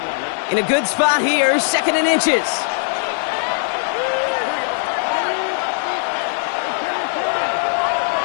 In a good spot here, second and inches.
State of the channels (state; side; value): silent; right; digital silence